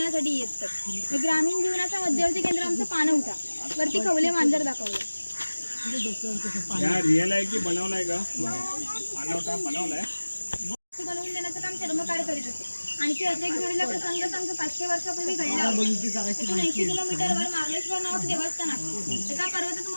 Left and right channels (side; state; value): both; inverted; correlation -1.00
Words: येतात. हे ग्रामीण जीवनाचा मध्यवर्ती केंद्र आमचं पाणवठा. वरती खवले मांजर दाखवलं. रिअल आहे की बनवलाय का? पाणवठा बनवलाय. बनवून देण्याचं काम चर्मकार करीत असते. आणखी असे एक जोडीला प्रसंग सांग 500 वर्षापूर्वी घडला. 80 किलोमीटरवर मार्लेश्वर नावाचं देवस्थान आहे. एका पर्वतात